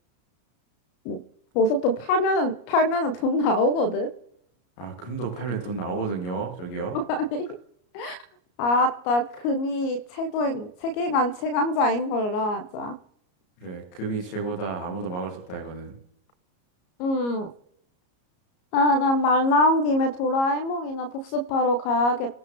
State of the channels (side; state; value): right; late; 33 ms